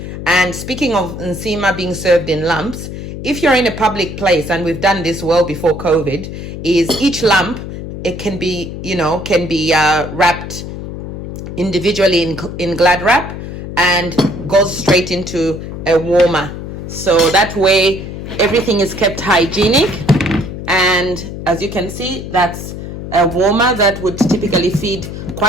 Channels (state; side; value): noise; left; hum, 8 dB below the sound